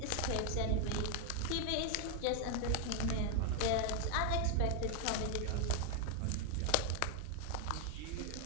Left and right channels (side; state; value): both; different; correlation 0.00